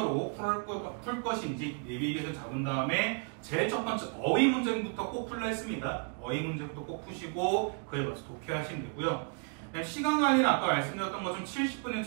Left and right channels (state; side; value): quieter; left; 38.6 dB